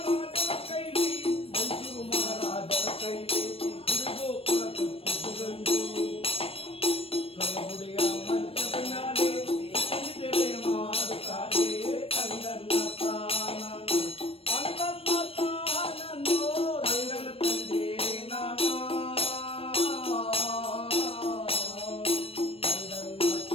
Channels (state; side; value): late; right; 0.28 ms